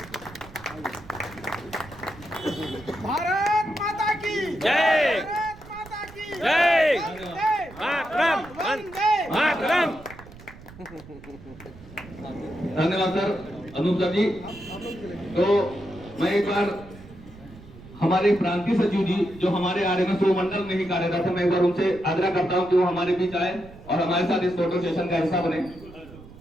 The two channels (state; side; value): noise; right; rumble, 19 dB below the sound